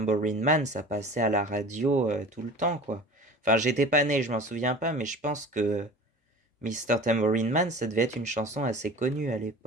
Man, ça passait à la radio tout le temps, quoi. Enfin, j'étais pas né, je m'en souviens pas, mais je pense que Mr. Tambourine Man, ça devait être une chanson assez connue à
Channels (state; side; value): normal; both; correlation 0.40